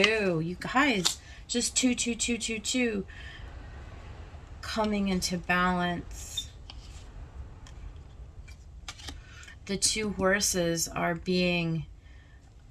You guys, just two, two, two, two, two. Coming into balance. The two horses are being,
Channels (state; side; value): identical; both; correlation 1.00